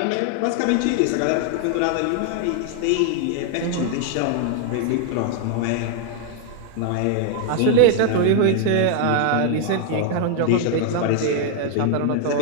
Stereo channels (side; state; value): both; different; correlation 0.00